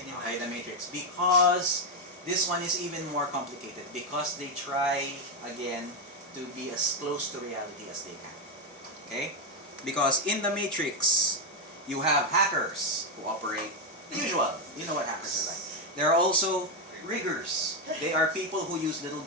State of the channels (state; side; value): normal; both; correlation 0.05